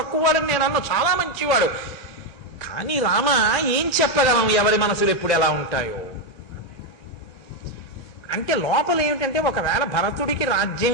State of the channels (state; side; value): normal; both; correlation 0.05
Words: నేను అన్న, చాలా మంచివాడు. కానీ రామ ఏం చెప్పగలం, ఎవరి మనసులు ఎప్పుడు ఎలా ఉంటాయో అంటే. లోపల ఏమిటంటే, ఒకవేళ భరతుడికి